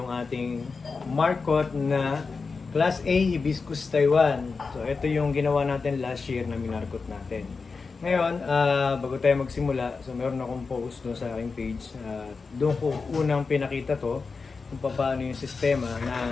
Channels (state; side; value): quieter; right; 4.6 dB